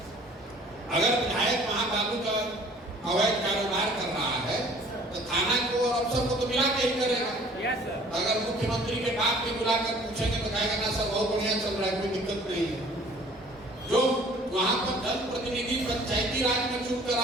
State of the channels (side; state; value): both; normal; correlation 0.52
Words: अगर विधायक वहां बाबू का अवैध कारोबार कर रहा है तो थाना को और अफसर को तो मिला के ही करेगा। अगर मुख्यमंत्री के बाप को बुलाकर पूछेंगे तो कहेगा ना सर बहुत बढ़िया चल रहा है, कोई दिक्कत नहीं है। जो वहां पर जनप्रतिनिधि पंचायती राज में चुप